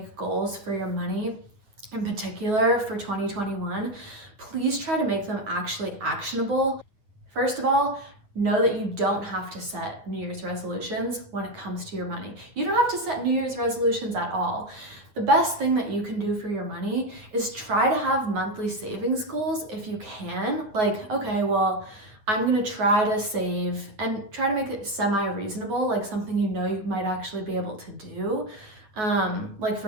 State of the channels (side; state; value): left; late; 9.1 ms